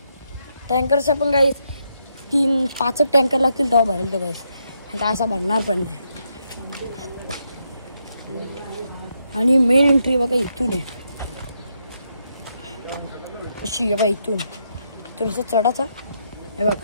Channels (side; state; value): both; inverted; correlation -0.78